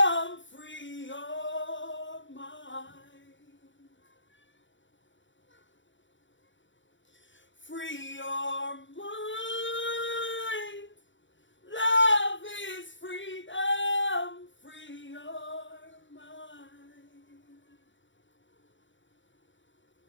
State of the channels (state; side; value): late; right; 0.55 ms